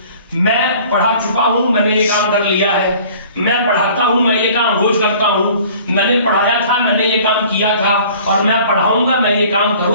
मैं पढ़ा चुका हूं, मैंने ये काम कर लिया है। मैं पढ़ाता हूं, मैं ये काम रोज करता हूं। मैंने पढ़ाया था, मैंने ये काम किया था और मैं पढ़ाऊंगा, मैं ये काम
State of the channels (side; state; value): both; inverted; correlation -0.49